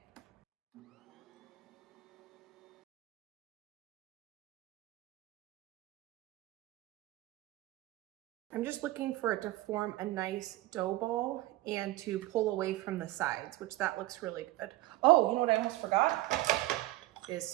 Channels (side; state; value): left; quieter; 17.5 dB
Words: I'm just looking for it to form a nice dough ball and to pull away from the sides, which that looks really good. Oh, you know what I almost forgot? Is